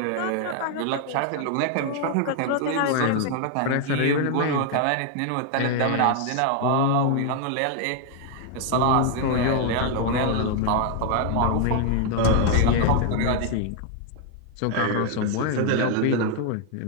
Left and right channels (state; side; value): different; both; correlation 0.00